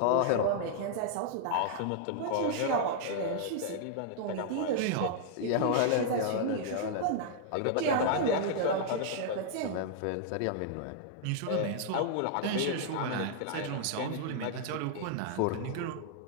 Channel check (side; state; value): both; different; correlation -0.01